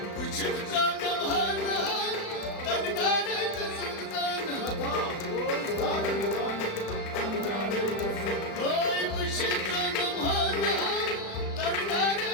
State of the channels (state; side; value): late; right; 36 ms